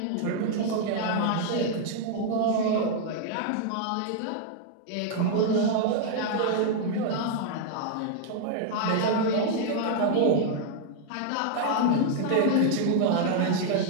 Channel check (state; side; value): different; both; correlation 0.00